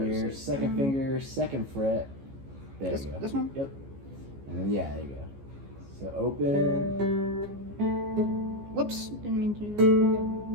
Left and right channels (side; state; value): left; late; 14 ms